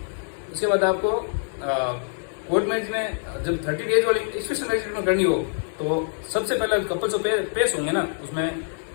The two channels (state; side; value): silent; right; 62 dB below the other